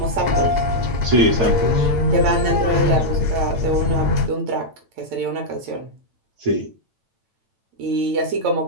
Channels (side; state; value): left; late; 8.9 ms